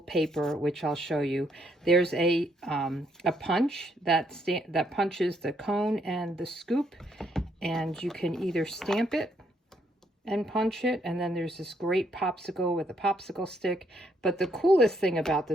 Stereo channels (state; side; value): normal; both; correlation 0.72